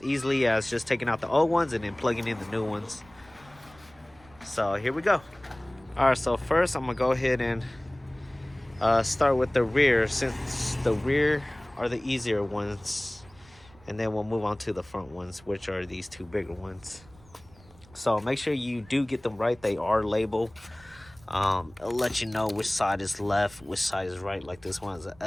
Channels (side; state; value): right; noise; rumble, 25 dB below the sound